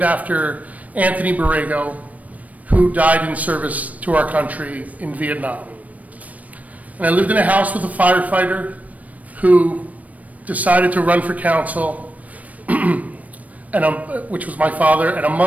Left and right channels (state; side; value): late; left; 0.070 ms